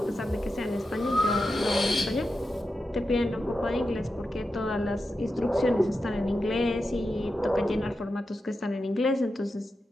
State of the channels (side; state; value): both; normal; correlation 0.90